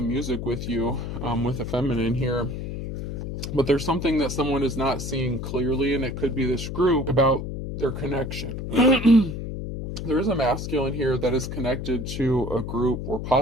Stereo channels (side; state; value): left; noise; hum, 6 dB below the sound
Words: music with you, with a feminine here. But there's something that someone is not seeing clearly, and it could be this group, about their connection. There is a masculine here that is connected to a group, or